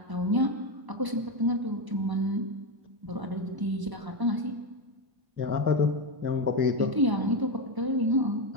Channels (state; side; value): late; left; 1.0 ms